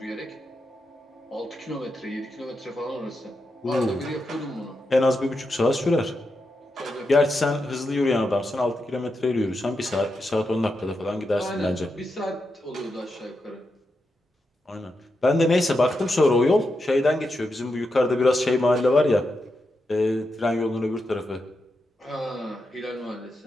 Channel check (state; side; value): normal; both; correlation 0.86